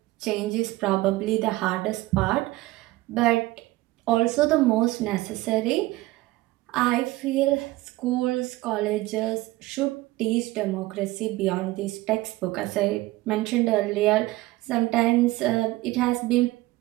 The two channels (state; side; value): quieter; left; 18.9 dB